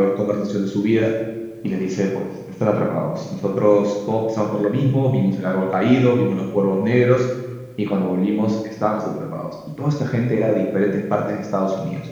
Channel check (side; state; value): both; identical; correlation 1.00